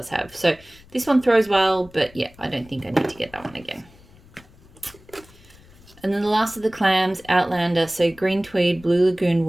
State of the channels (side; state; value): left; noise; rumble, 25 dB below the sound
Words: have. So this one throws well, but yeah, I don't think I need to get that one again. And then the last of the clams, Outlander. So green tweed, blue lagoon